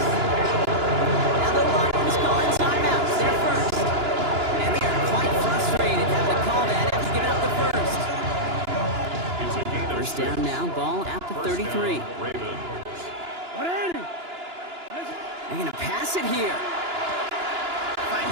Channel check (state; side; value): late; left; 2.9 ms